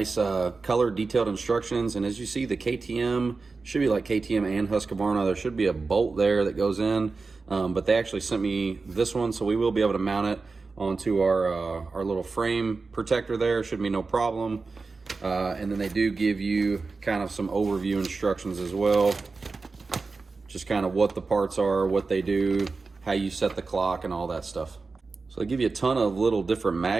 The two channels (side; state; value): left; quieter; 4.1 dB